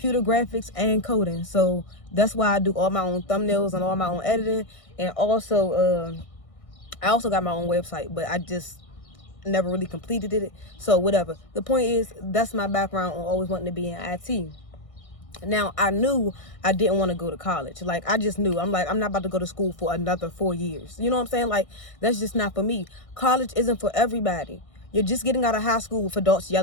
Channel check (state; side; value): late; right; 1.6 ms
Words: graphics and coding. So that's why I do all my own thumbnails and all my own editing. And also, I also got my own website, but I just never really completed it. So whatever. The point is, that's my background on always wanting to be in IT. Now, I knew I didn't want to go to college. Like, I just knew. I'm like, I'm not about to go to school for another 4 years. You know what I'm saying? Like, that's just not for me. College isn't for everybody. You're just getting out of high school with adults